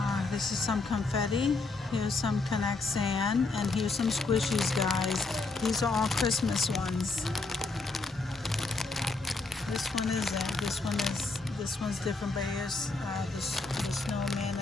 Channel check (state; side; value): quieter; right; 3.6 dB